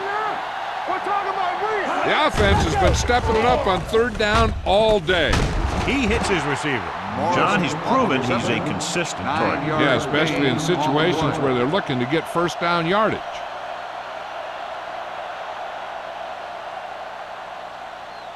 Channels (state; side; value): identical; both; correlation 1.00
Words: We're talking about me. The offense has been stepping it up on 3rd down all day. He hits his receiver. John, he's proven he's a consistent target. Yeah, especially in situations where they're looking to get first down yardage.